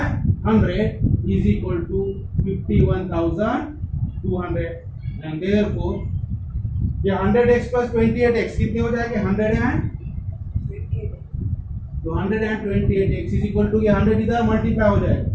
100 is equal to 51,200 and therefore ये 100x plus 28x कितने हो जाएंगे 100 and तो 128x is equal to ये 100 इधर मल्टीप्लाई हो जाएगा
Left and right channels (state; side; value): identical; both; correlation 1.00